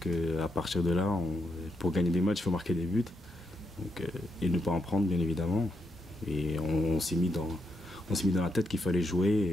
à partir de là, pour gagner des matchs, il faut marquer des buts. Donc, et ne pas en prendre bien évidemment. Et on s'est mis dans la tête qu'il fallait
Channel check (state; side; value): normal; both; correlation 0.80